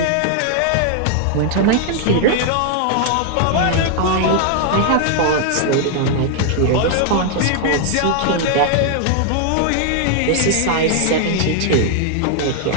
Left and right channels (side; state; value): both; different; correlation 0.00